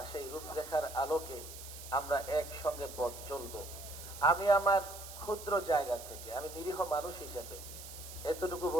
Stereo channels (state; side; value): noise; right; hiss, 13 dB below the sound